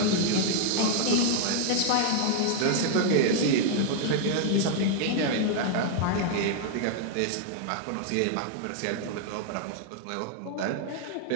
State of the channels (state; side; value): different; both; correlation 0.00